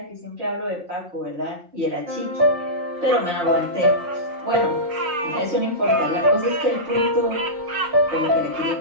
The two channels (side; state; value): left; late; 5.6 ms